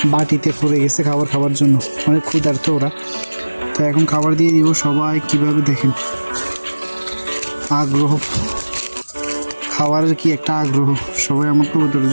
বাটিতে পড়ে গেছে খাবার জন্য, অনেক ক্ষুধার্ত ওরা। তো এখন খাবার দিয়ে দিব। সবাই কিভাবে দেখেন আগ্রহ, খাবারের কি একটা আগ্রহ। সবাই আমার কবুতরের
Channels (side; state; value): both; inverted; correlation -1.00